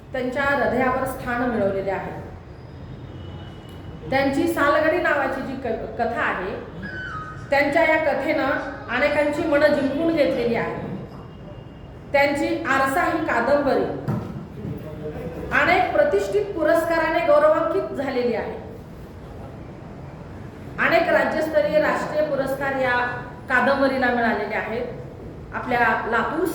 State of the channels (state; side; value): identical; both; correlation 1.00